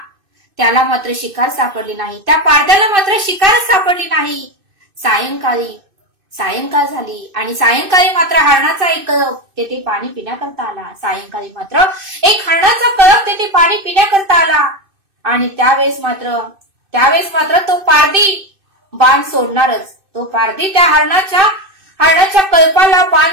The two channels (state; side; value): late; left; 2.6 ms